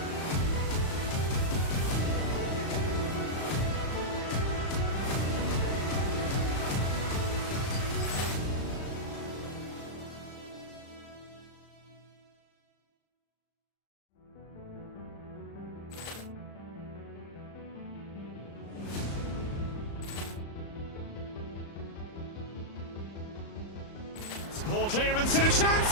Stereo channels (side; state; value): right; late; 35 ms